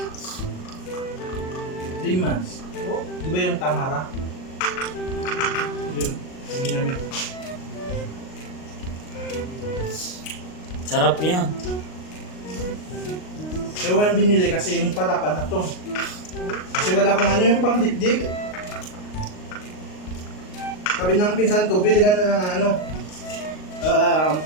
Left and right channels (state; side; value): late; right; 38 ms